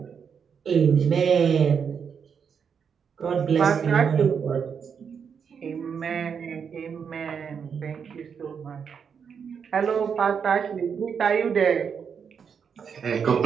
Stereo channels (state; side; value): quieter; left; 6.8 dB